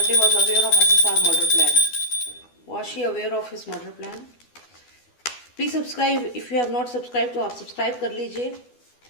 was aware of SSR murder plan. Was she aware of his murder plan? Please subscribe, if you have not subscribe तो आप subscribe कर लीजिए।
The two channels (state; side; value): late; right; 12 ms